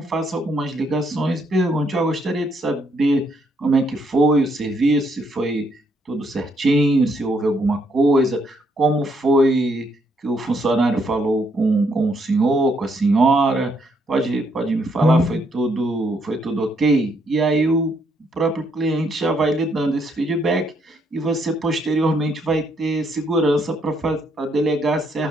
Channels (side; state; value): both; normal; correlation 0.73